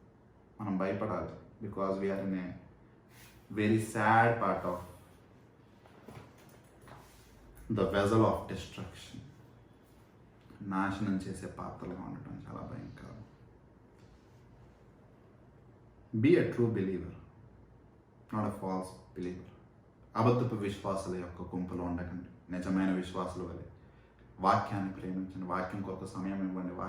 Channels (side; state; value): both; identical; correlation 1.00